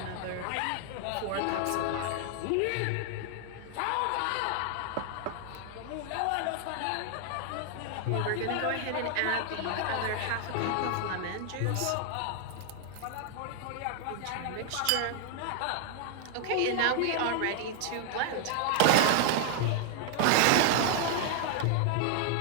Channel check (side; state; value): both; different; correlation 0.00